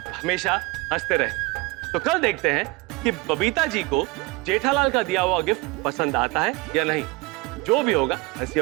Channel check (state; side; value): quieter; left; 23.2 dB